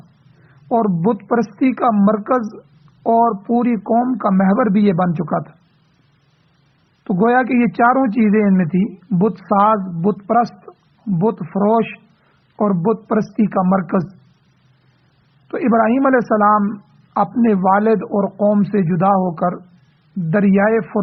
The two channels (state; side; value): identical; both; correlation 1.00